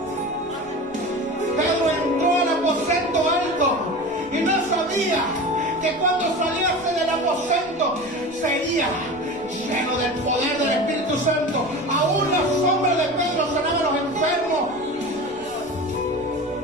Pedro entró al aposento alto y no sabía que cuando saliese del aposento sería lleno del poder del Espíritu Santo. Aún la sombra de Pedro sanaba a los enfermos.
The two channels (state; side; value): noise; left; rumble, 26 dB below the sound